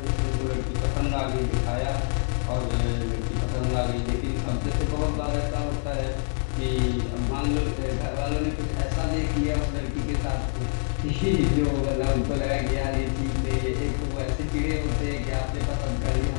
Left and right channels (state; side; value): silent; right; 61 dB below the other